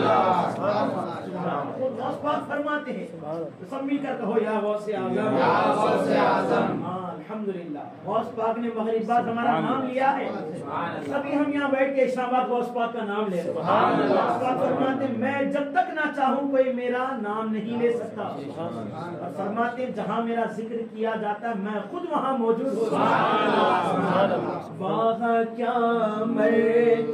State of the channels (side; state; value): both; identical; correlation 1.00